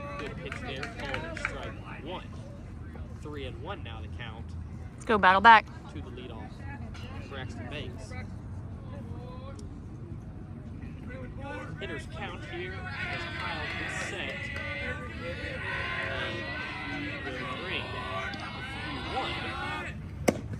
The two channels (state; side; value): identical; both; correlation 1.00